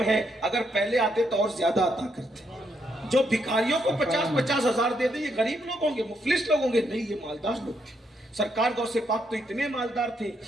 ہے، اگر پہلے آتے تو اور زیادہ عطا کرتے. جو بھکاریوں کو 50 ہزار دیتے یہ غریب لوگ ہوں گے، مفلس لوگ ہوں گے؟ نہیں، یہ مالدار لوگ تھے. سرکار غوث پاک تو اتنے مالدار تھے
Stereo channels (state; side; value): normal; both; correlation 0.77